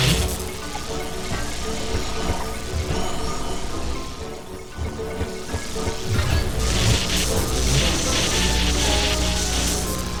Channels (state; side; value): identical; both; correlation 1.00